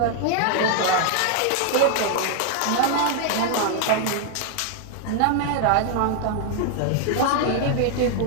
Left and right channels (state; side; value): different; both; correlation 0.00